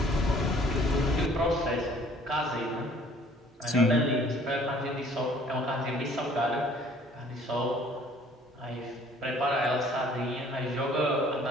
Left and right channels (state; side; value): normal; both; correlation 0.56